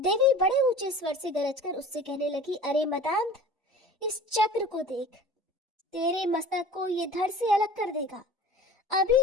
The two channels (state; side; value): normal; both; correlation 0.42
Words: बड़े ऊंचे स्वर से गरजकर उससे कहने लगी, अरे मदांध, इस चक्र को देख, तेरे मस्तक को ये धड़ से अलग कर देगा।